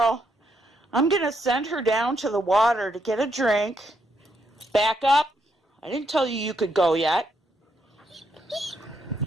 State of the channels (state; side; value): normal; both; correlation 0.77